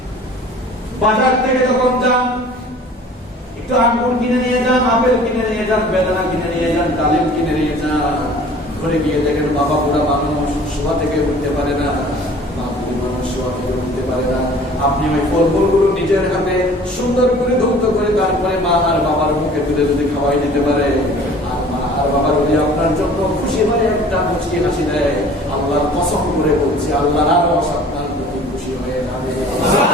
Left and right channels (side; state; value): both; normal; correlation 0.48